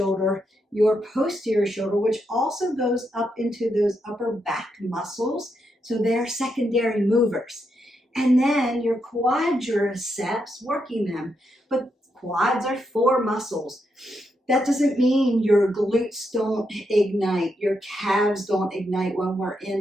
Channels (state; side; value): normal; both; correlation 0.81